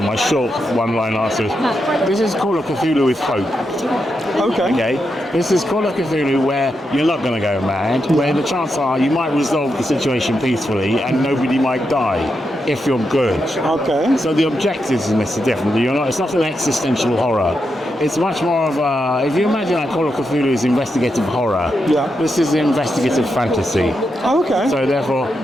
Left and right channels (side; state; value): both; normal; correlation 0.85